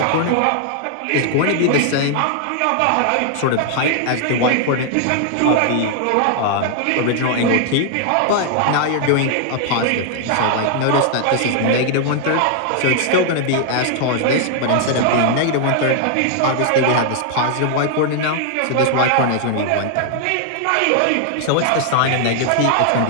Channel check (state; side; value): different; both; correlation 0.00